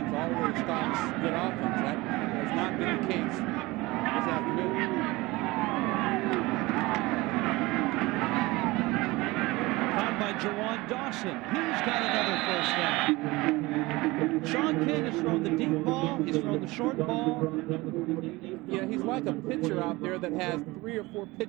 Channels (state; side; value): quieter; left; 21.5 dB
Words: always stops good offense. That has not been the case this afternoon. Caught by Jawan Dawson. He's got another first down. Sean King has thrown the deep ball. He's thrown the short ball. Yeah, he's like a pitcher out there that has 3 or 4